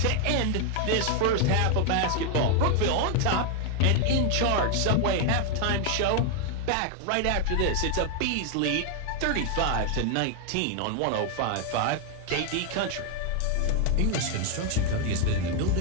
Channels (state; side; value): different; both; correlation 0.00